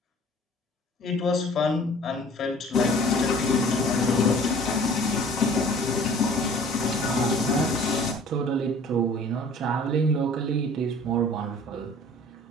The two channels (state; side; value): normal; both; correlation 0.49